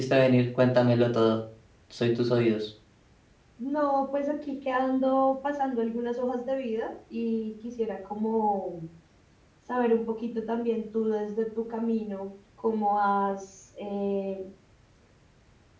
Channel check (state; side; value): identical; both; correlation 1.00